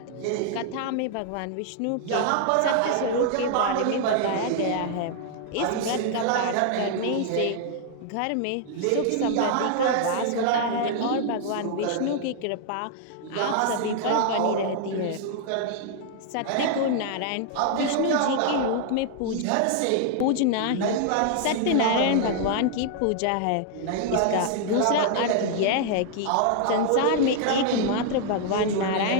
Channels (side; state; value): both; different; correlation -0.01